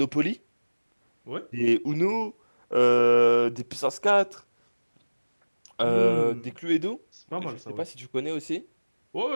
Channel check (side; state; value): both; inverted; correlation -1.00